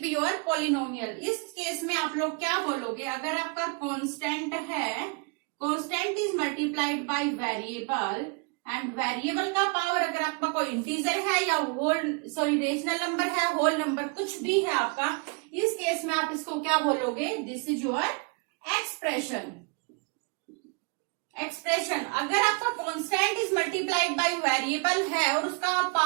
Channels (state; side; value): quieter; left; 34.6 dB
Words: be your polynomial. इस केस में आप लोग क्या बोलोगे? अगर आपका कांस्टेंट है, constant is multiplied by variable, and variable का पावर अगर आपका कोई इंटीजर है या रेशनल नंबर है, होल नंबर कुछ भी है आपका, इस केस में आप इसको क्या बोलोगे? This is your expression. अगर आपका constant is multiplied by variable है और उसका